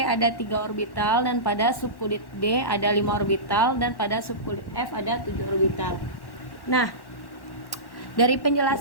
ada 3 orbital, dan pada subkulit D ada 5 orbital, dan pada subkulit F ada 7 orbital. Nah, dari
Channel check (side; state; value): right; late; 1.1 ms